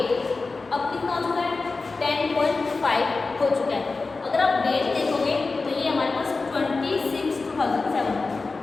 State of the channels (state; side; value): quieter; right; 3.9 dB